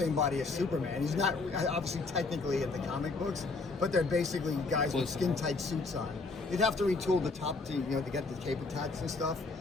body as Superman. He's not obviously technically in the comic books, but they're basically guys with skin-tight suits on. You'd have to retool the top to get the cape attached and stuff.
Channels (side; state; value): right; quieter; 3.8 dB